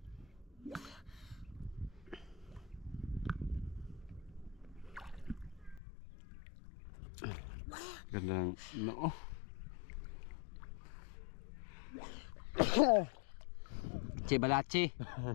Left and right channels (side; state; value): right; drops out; at 5.8 s